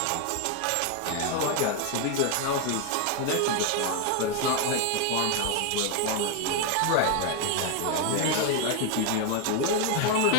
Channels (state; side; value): different; both; correlation 0.01